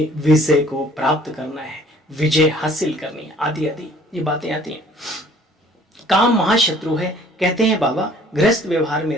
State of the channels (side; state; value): both; normal; correlation 0.55